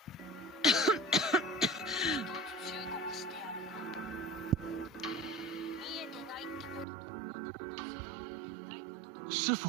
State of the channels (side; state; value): left; drops out; at 6.9 s